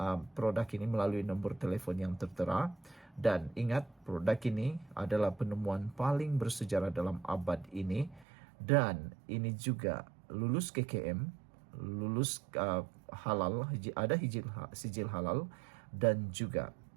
produk ini melalui nombor telefon yang tertera. Dan ingat, produk ini adalah penemuan paling bersejarah dalam abad ini. Dan ini juga lulus KKM, lulus halal, ada sijil halal, dan juga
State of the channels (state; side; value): drops out; left; at 8.2 s